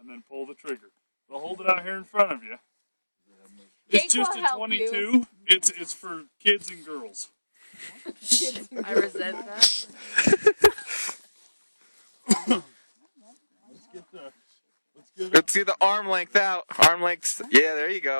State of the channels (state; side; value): inverted; both; correlation -1.00